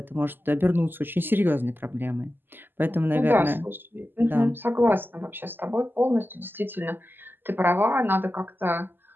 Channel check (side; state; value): left; late; 0.095 ms